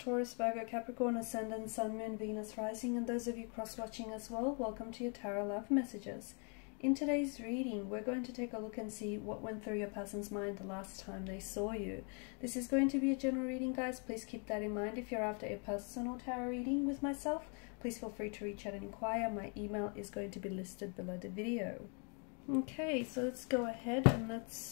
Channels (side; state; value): right; quieter; 38.1 dB